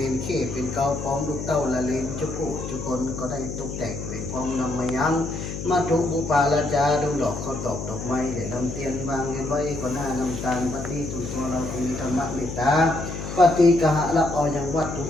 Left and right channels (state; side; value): noise; left; hum, 7 dB below the sound